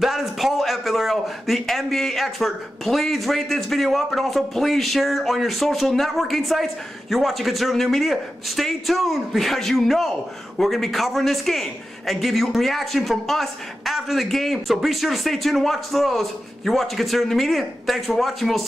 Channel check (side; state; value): both; normal; correlation 0.91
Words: is Paul F. Villarreal, the NBA expert. Please rate this video up, and also please share it on your social networking sites. You're watching Conservative New Media. Stay tuned, because you know we're going to be covering this game and give you a reaction from us after the game. So be sure to stay tuned and watch those. You're watching Conservative New Media. Thanks for watching. We'll